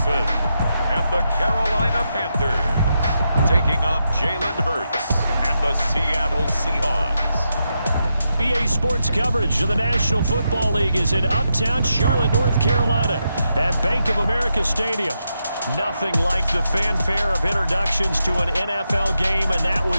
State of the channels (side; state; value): both; inverted; correlation -0.85